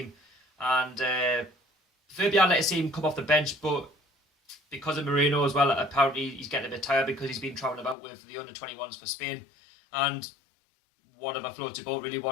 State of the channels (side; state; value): right; drops out; at 8.0 s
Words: And maybe I'd like to see him come off the bench, but because of Moreno as well, apparently he's getting a bit tired because he's been travelling about with the under-21s for Spain. And whatever floats your boat, really,